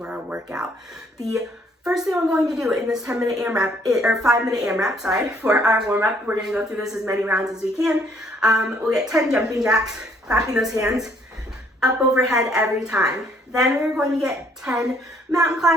our workout. The first thing I'm going to do in this 5-minute AMRAP, for our warm-up, we're going to go through this as many rounds as we can. We'll get 10 jumping jacks, clapping those hands up overhead every time. Then we're going to get 10 mountain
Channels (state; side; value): normal; both; correlation 0.64